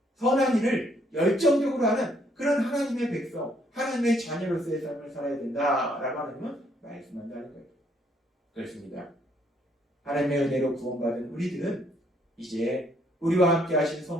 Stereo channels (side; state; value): both; normal; correlation 0.68